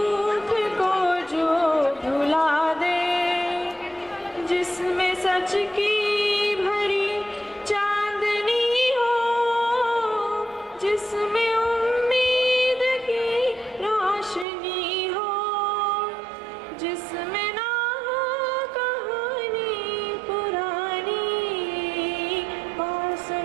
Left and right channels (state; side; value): drops out; left; at 14.5 s